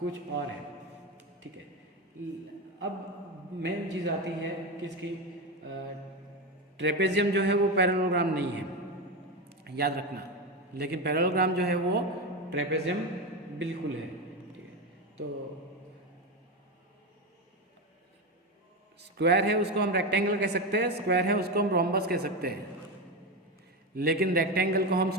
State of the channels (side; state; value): both; normal; correlation 0.16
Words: और है। ठीक है, अब मेन चीज़ आती है किसकी, ट्रेपेजियम जो है वो पैरेललोग्राम नहीं है, याद रखना, लेकिन पैरेललोग्राम जो है वो ट्रेपेजियम बिल्कुल है, ठीक है। तो स्क्वायर है उसको हम रेक्टेंगल कह सकते हैं, स्क्वायर है उसको हम रोम्बस कह सकते हैं, लेकिन रेक्टेंगल को हम